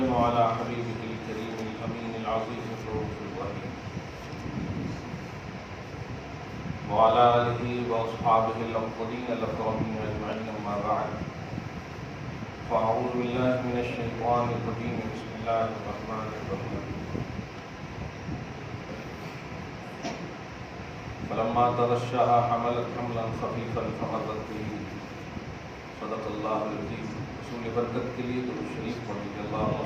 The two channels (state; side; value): identical; both; correlation 1.00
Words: على حبيبه الكريم الأمين العظيم الرؤوف الرحيم وعلى آله وأصحابه الأفضلين الأكرمين أجمعين أما بعد فأعوذ بالله من الشيطان الرجيم بسم الله الرحمن الرحيم فلما تغشاها حملت حملا خفيفا فمرت به صدق الله العظيم رسول برکت کے لیے درود شریف پڑھیے اللهم